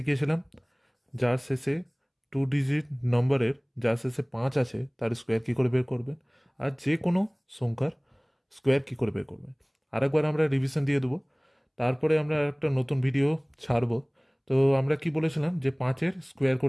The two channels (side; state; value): both; identical; correlation 1.00